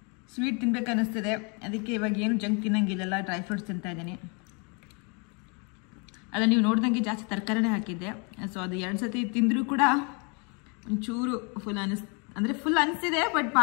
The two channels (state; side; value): quieter; right; 34.1 dB